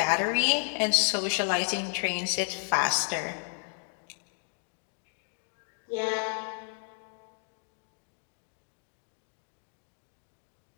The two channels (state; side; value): silent; right; 56 dB below the other